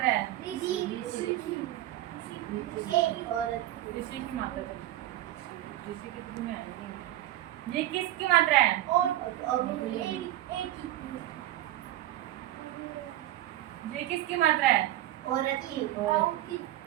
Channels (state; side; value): quieter; left; 14.3 dB